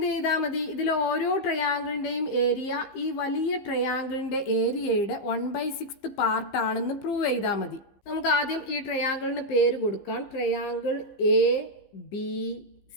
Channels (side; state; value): right; late; 15 ms